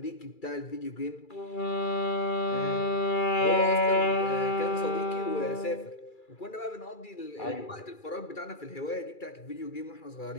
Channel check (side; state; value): right; late; 2.3 ms